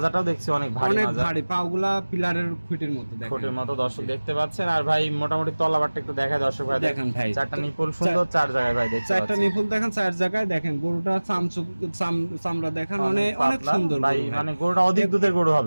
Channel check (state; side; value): inverted; both; correlation -1.00